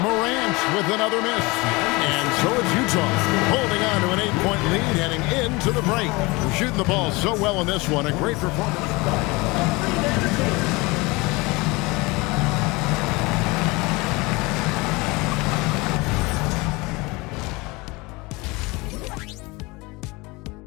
Morant with another miss. And so it's Utah holding on to an 8-point lead heading into the break. Shooting the ball so well in this one. A great performance.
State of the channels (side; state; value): right; quieter; 24.5 dB